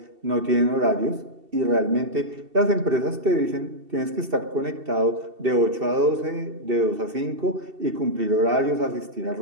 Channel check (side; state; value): left; late; 2.7 ms